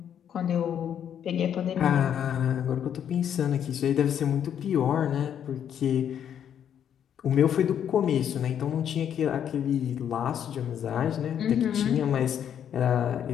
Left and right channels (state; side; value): quieter; right; 9.1 dB